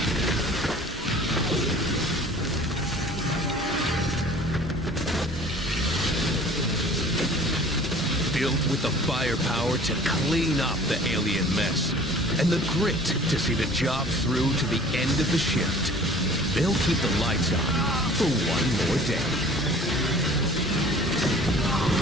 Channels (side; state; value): both; normal; correlation 0.47